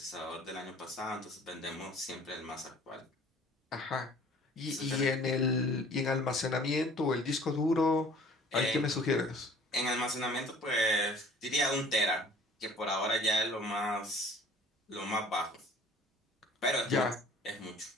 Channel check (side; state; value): both; normal; correlation 0.51